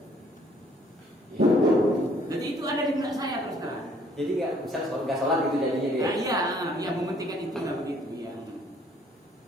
Jadi itu ada di benak saya terus terang. Jadi nggak sholat gitu jadinya dia. Nah, iya, mementingkan itu lah begitu ya.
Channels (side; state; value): both; normal; correlation 0.61